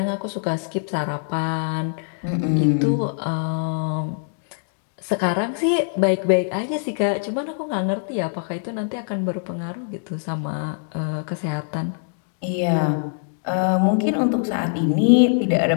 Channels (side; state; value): right; silent; digital silence